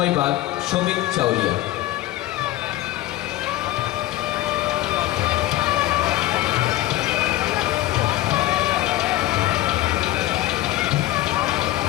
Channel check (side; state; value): right; quieter; 16.0 dB